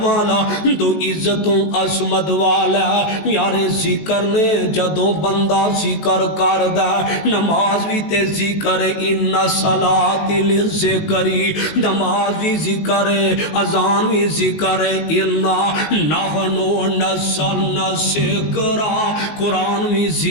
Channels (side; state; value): right; late; 18 ms